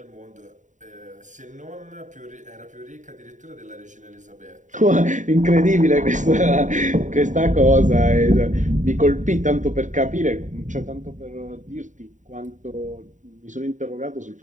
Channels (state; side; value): late; left; 0.36 ms